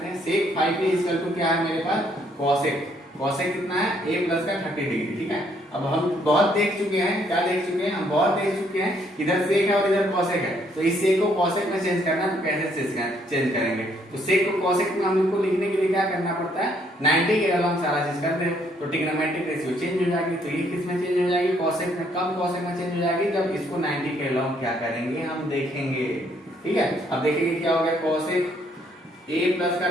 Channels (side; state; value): both; normal; correlation 0.68